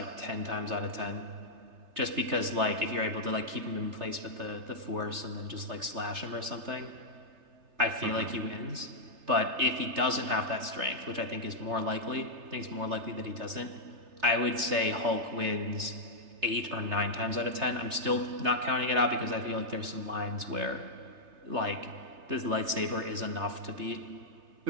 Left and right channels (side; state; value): left; late; 3.3 ms